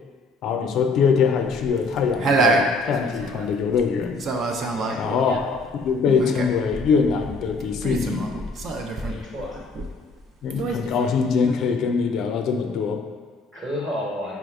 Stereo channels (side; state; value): right; quieter; 3.4 dB